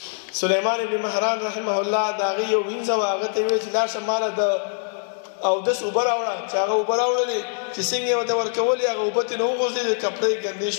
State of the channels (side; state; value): right; silent; 63 dB below the other